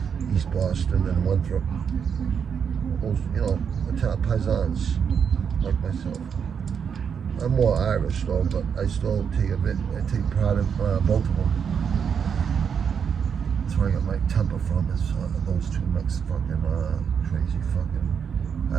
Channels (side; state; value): left; quieter; 7.0 dB